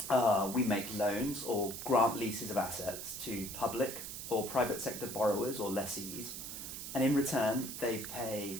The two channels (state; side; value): noise; right; hiss, 8 dB below the sound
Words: We make loans or grant leases of assets to public or private sector borrowers or lessees, and in return they pay